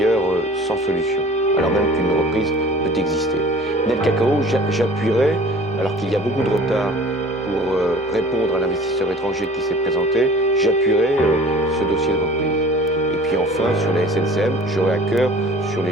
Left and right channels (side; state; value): both; normal; correlation 0.46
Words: sans solution, alors même qu'une reprise peut exister. Nel Cacao, j'appuierai, alors qu'il y a beaucoup de retard pour répondre à l'investisseur étranger qui s'est présenté, j'appuierai ce dossier de reprise. Et puis enfin, sur la SNCM, j'aurai à cœur sur